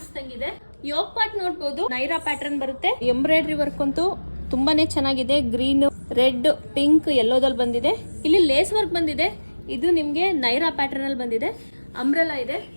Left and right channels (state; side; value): inverted; both; correlation -1.00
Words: ಯೋಗ್ ಪಾರ್ಟ್ ನೋಡ್ಬೋದು, ನೈರಾ ಪ್ಯಾಟರ್ನ್ ಬರುತ್ತೆ. ಎಂಬ್ರಾಯ್ಡ್ರಿ ವರ್ಕ್ ಅಂತೂ ತುಂಬಾನೇ ಚೆನ್ನಾಗಿದೆ. ಗ್ರೀನ್, ರೆಡ್, ಪಿಂಕ್, ಯೆಲ್ಲೋದಲ್ಲಿ ಬಂದಿದೆ. ಇಲ್ಲಿ ಲೇಸ್ ವರ್ಕ್ ಬಂದಿದೆ. ಇದು ನಿಮ್ಗೆ ನೈರಾ ಪ್ಯಾಟರ್ನ್ ಅಲ್ಲಿ ಬಂದಿದೆ. ಅಂಬ್ರೆಲಾ ಇದೆ,